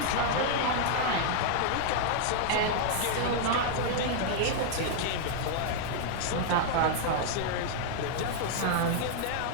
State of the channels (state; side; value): different; both; correlation -0.01